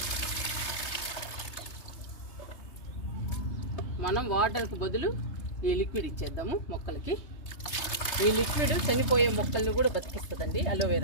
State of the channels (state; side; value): late; right; 3.3 ms